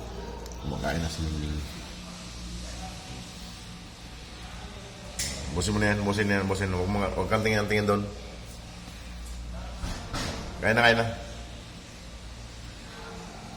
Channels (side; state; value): both; identical; correlation 1.00